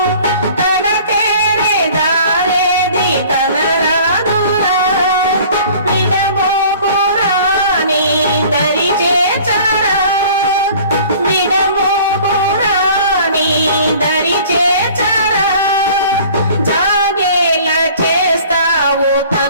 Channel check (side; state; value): both; inverted; correlation -0.48